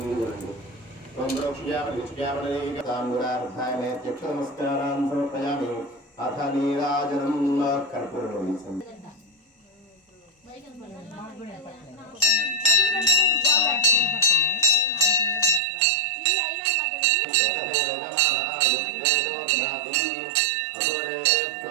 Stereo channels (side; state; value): left; drops out; at 15.6 s